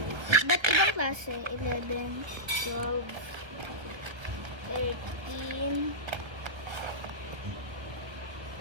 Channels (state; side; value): late; left; 1.4 ms